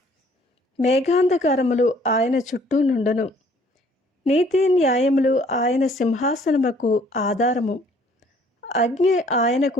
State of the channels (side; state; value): both; normal; correlation 0.59